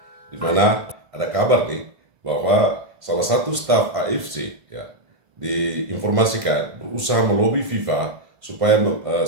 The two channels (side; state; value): left; late; 1.5 ms